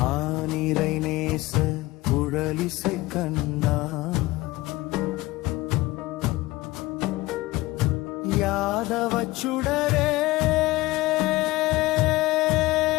ஆனிரை நேச குழலிசை கண்ணா யாதவ சுடரே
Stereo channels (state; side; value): quieter; right; 19.3 dB